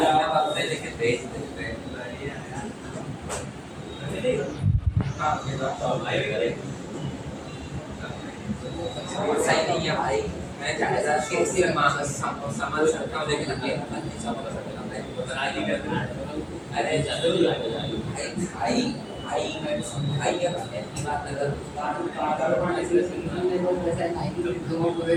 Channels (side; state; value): both; identical; correlation 1.00